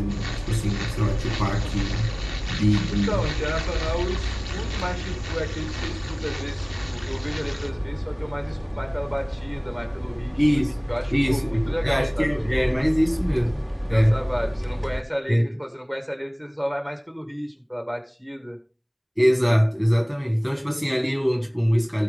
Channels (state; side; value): identical; both; correlation 1.00